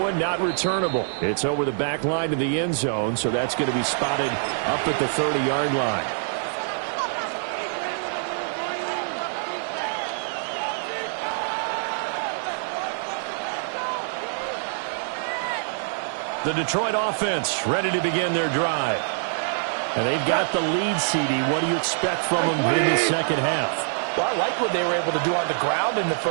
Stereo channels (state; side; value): silent; left; 55 dB below the other